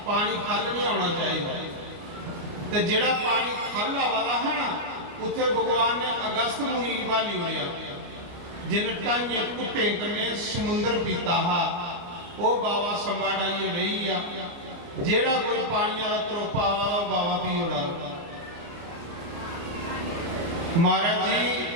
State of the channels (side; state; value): left; late; 29 ms